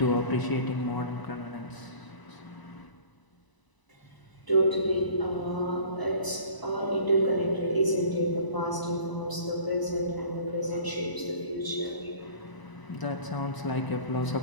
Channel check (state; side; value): late; right; 1.0 ms